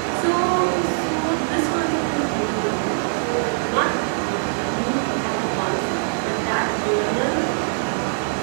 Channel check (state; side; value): silent; left; digital silence